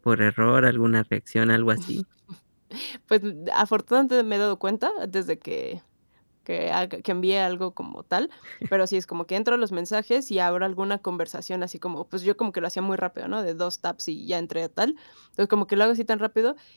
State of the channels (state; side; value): inverted; both; correlation -1.00